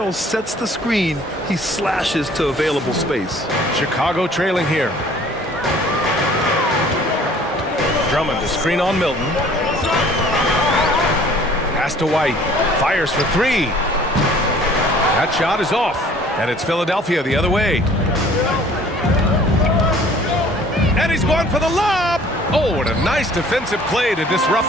sets the screen, he slashes to available space. Chicago trailing here. Drummond, a screen on Milton. Pass to White. Fires for 3. That shot is off. And it's Philadelphia the other way. And he's going for the lob. Oh, what a nice defensive play to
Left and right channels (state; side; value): normal; both; correlation 0.53